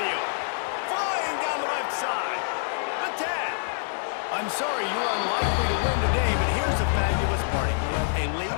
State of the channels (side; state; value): right; silent; digital silence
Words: Flying down the left side. The 10. I'm sorry, you're unlikely to win today, but here's a fabulous party. A